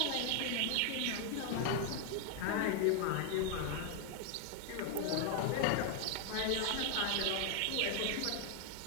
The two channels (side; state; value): both; different; correlation 0.00